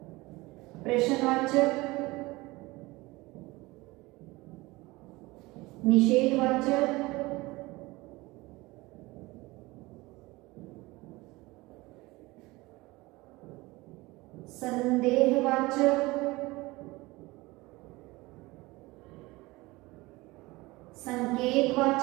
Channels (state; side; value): quieter; left; 21.5 dB